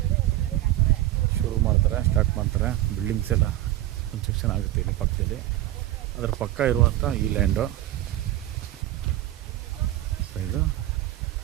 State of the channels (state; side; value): quieter; left; 14.6 dB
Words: ಸ್ಟಾರ್ಟ್ ಮಾಡ್ತಾರೆ. ಬಿಲ್ಡಿಂಗ್ಸ್ ಎಲ್ಲ ಕನ್ಸ್ಟ್ರಕ್ಷನ್ ಆಗುತ್ತೆ ಇಲ್ಲಿ ಪಕ್ಕದಲ್ಲಿ. ಅದರ ಪಕ್ಕ ಇರುವಂಥ ಈ ಲ್ಯಾಂಡು. ಸೊ ಇದು